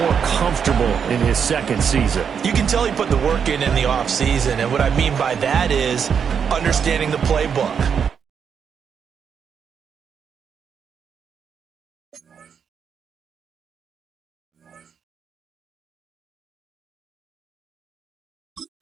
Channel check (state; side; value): quieter; left; 7.1 dB